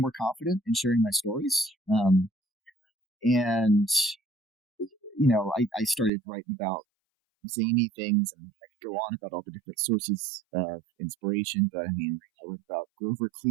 confident in sharing my stories. I started writing about zany things, and I could go on about all the different sources of inspiration. But I mean, I wrote about Grover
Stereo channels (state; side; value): drops out; left; at 6.1 s